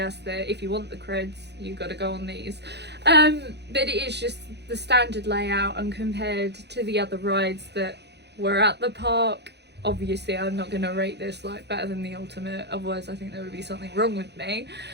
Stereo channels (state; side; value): late; left; 0.50 ms